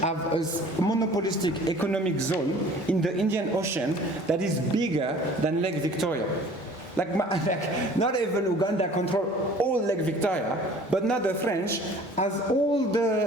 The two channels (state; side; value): normal; both; correlation 0.49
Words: have a monopolistic economic zone in the Indian Ocean that is bigger than Lake Victoria? Like not even Uganda control all Lake Victoria, but now the French, as